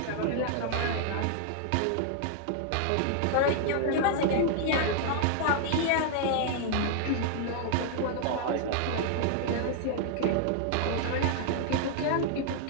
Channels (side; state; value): both; different; correlation 0.00